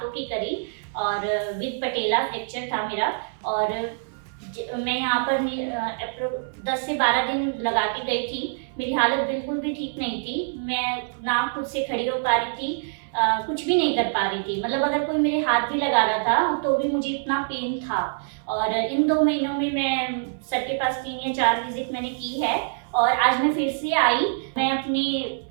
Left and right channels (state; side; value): silent; left; 58 dB below the other